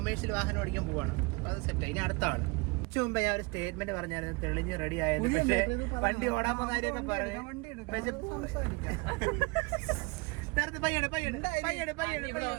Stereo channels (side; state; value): left; quieter; 27.1 dB